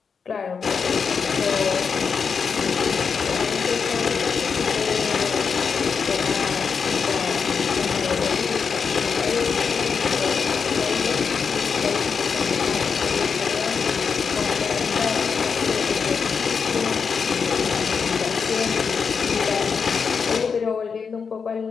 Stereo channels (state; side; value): quieter; right; 5.9 dB